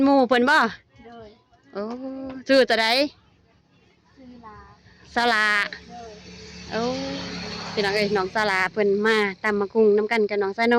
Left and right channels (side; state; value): both; identical; correlation 1.00